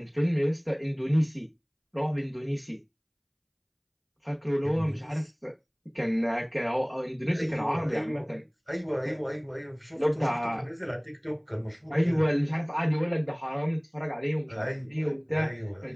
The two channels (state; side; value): identical; both; correlation 1.00